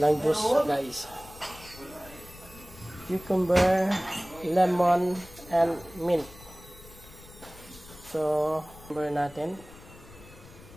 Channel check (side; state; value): left; noise; rumble, 20 dB below the sound